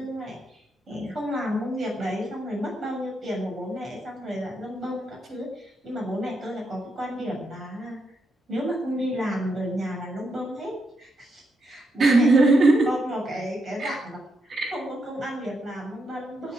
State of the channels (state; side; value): normal; both; correlation 0.81